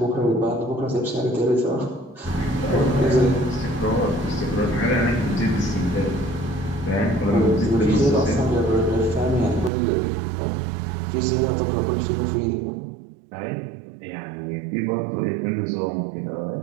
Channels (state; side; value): drops out; left; at 9.7 s